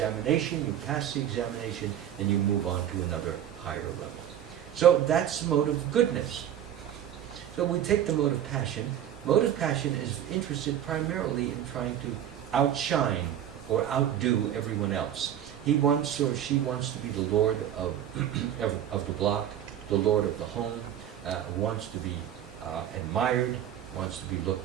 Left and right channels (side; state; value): left; quieter; 10.5 dB